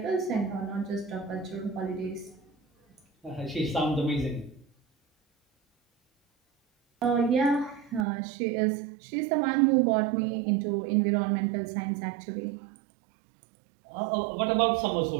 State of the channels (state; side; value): drops out; left; at 8.1 s